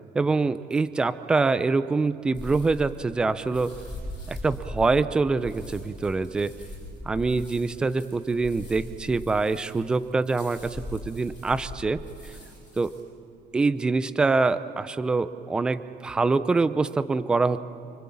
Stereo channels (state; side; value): quieter; left; 3.3 dB